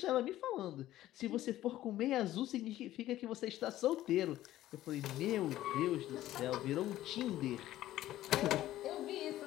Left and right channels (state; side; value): quieter; right; 14.2 dB